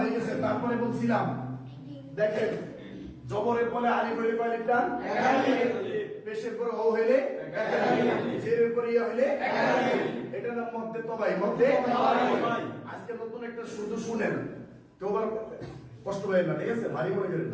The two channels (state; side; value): identical; both; correlation 1.00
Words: গেছে। তারপরে বলছিলাম দেখেন জবরের পরে আলিফ হইলে কয় লিফ টান? পেশের পরে ও হইলে জেরের পরে ইয়া হইলে এটা নাম মধ্যে তবাই। মধ্যে আজকে নতুন একটা শুধু শুনেন, কেউ আবার কষ্ট পাবেন না, ঠিক আছে? ভারী মনে করেন